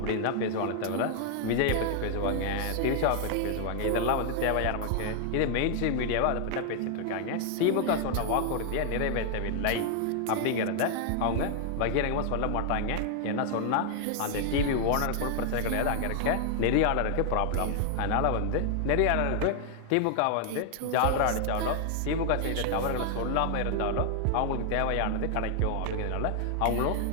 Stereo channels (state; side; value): different; both; correlation 0.00